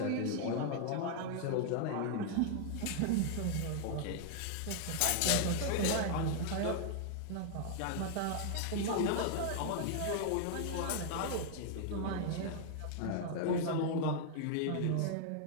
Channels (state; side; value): different; both; correlation 0.00